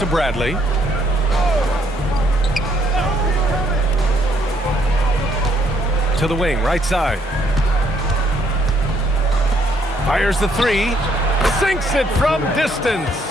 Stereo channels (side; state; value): both; normal; correlation 0.69